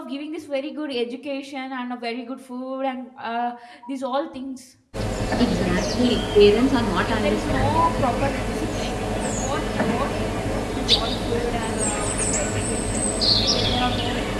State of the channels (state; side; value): identical; both; correlation 1.00